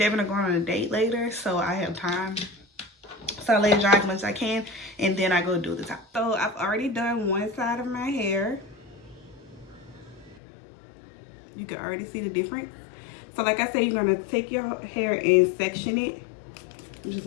are going on a date later, so I have time. So I let it dry as much as I can, and then I go do the top. So I've already done one side of my hair. You can already see the difference. So like I said, you're gonna take your hair and section it. I'm just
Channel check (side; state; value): right; drops out; at 10.4 s